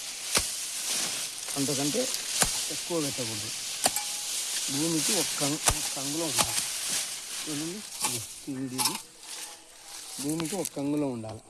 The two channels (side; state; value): both; identical; correlation 1.00